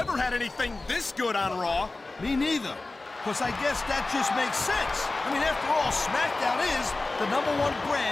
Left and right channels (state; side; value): quieter; right; 3.2 dB